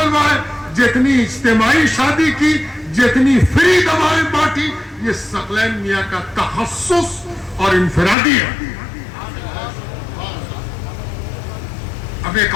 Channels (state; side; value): drops out; right; at 8.2 s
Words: جتنی اجتماعی شادی کی، جتنی فری دوائیں بانٹی، یہ ثقلین میاں کا تخصص اور انفرادی ہے. اب ایک